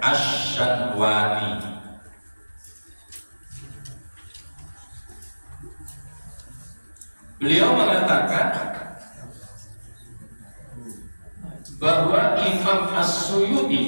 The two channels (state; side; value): inverted; both; correlation -1.00